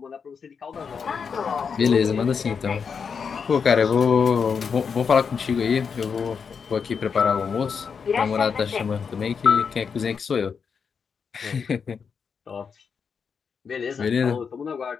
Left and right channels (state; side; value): quieter; right; 6.2 dB